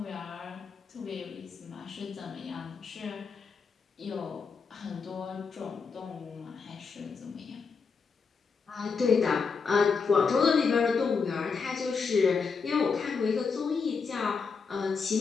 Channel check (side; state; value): right; quieter; 5.3 dB